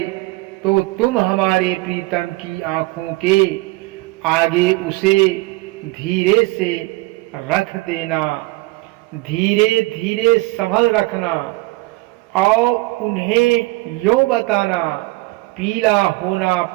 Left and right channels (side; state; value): left; quieter; 21.8 dB